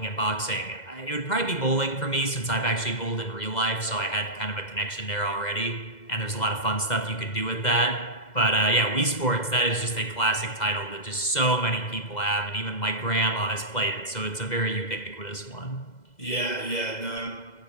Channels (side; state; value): right; late; 2.0 ms